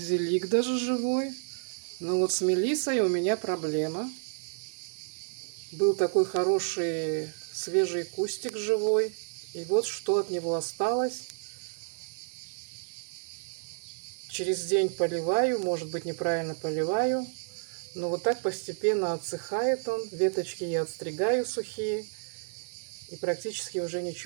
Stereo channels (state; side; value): silent; left; digital silence